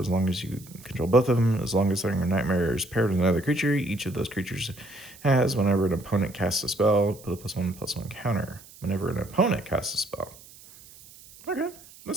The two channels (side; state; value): right; noise; hiss, 21 dB below the sound